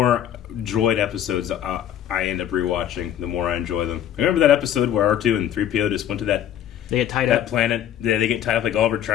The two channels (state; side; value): quieter; right; 10.6 dB